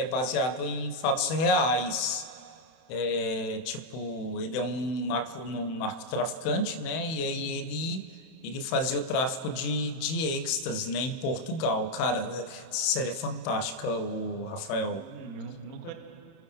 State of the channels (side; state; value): right; late; 31 ms